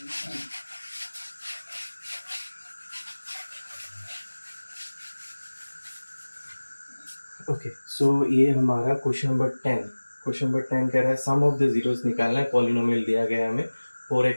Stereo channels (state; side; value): inverted; both; correlation -1.00